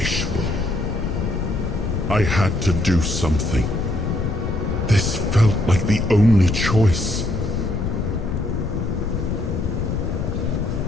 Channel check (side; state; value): left; noise; rumble, 2 dB below the sound